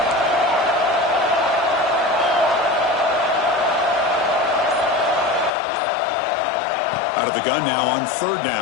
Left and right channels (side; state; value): right; drops out; at 5.5 s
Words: Out of the gun now on 3rd